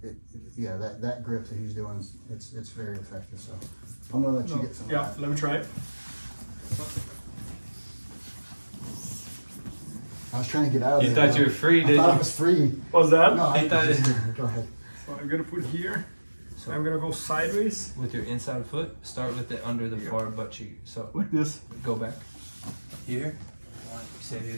yeah, that grip that he's doing, it's very effective. So I'm going to let you get some. Yeah, of that. let me try it. I was trying to get out of there. You thought you were free, I didn't thought I you? was free. What was that? No, I He thought just, it- go ahead. So I'm gonna put here. So I'm gonna go sideways with your inside foot, start with it under the far butt cheek. So like this. go back here. Say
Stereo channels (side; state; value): both; inverted; correlation -1.00